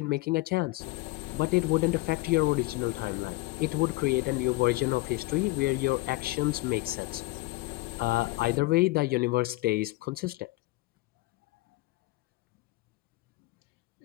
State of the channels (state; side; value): quieter; right; 20.8 dB